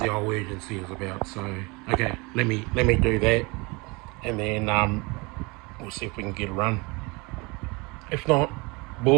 the old urgency is about. So okay, let me do that, and then we'll see if we can get a run. If not,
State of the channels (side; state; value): left; quieter; 27.0 dB